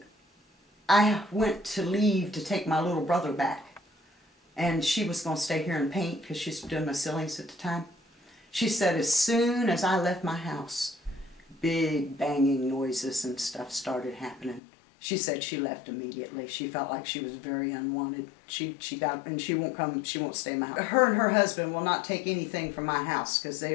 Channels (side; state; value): right; drops out; at 14.6 s